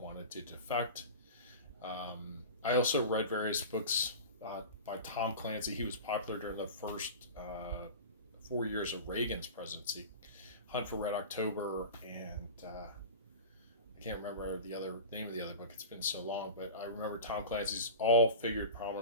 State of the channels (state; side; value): inverted; both; correlation -0.31